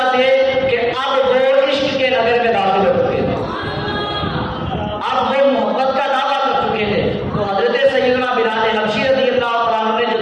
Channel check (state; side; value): identical; both; correlation 1.00